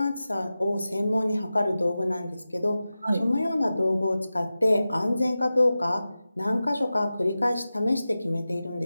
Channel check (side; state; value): both; inverted; correlation -0.94